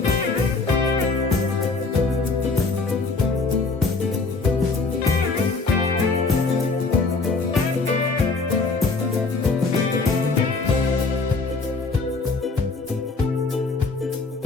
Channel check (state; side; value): quieter; right; 4.0 dB